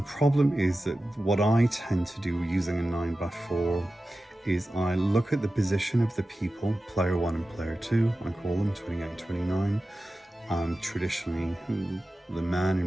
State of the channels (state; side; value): normal; both; correlation 0.94